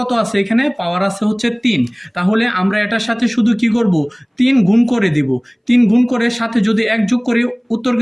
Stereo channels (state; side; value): identical; both; correlation 1.00